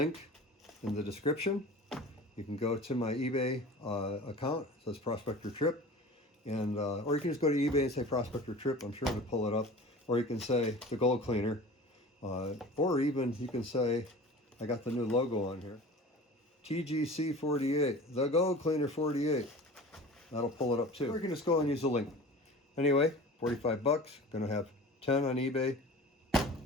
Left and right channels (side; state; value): both; normal; correlation 0.39